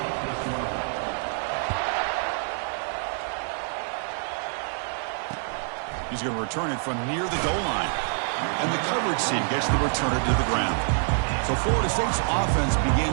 He's going to return it from near the goal line. And the coverage team gets the returner to the ground. So Florida State's offense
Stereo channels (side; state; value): left; silent; 61 dB below the other